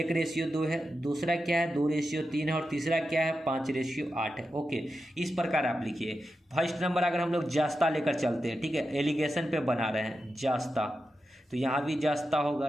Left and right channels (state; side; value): normal; both; correlation 0.89